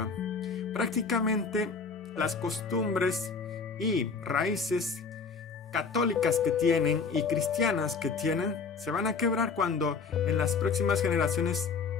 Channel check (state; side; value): quieter; right; 5.0 dB